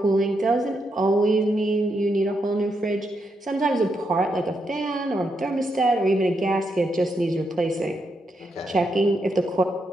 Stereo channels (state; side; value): normal; both; correlation 0.81